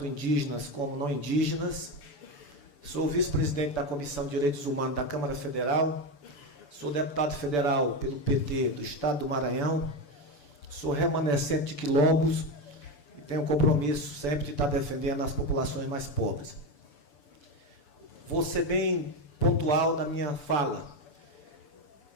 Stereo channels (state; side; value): late; right; 6.9 ms